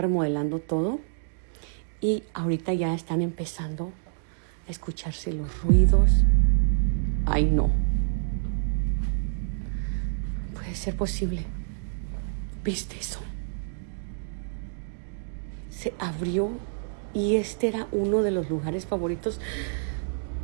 todo y ahorita ya están empezando a escucharse los ruidos. Ay, no. Puede ser posible. ¿Viste eso? Se abrió y este era uno de los lugares favoritos.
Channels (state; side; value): silent; left; digital silence